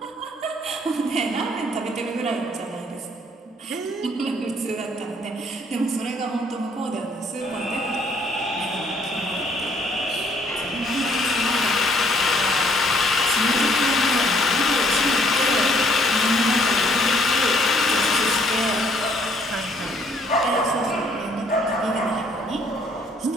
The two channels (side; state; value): both; normal; correlation 0.64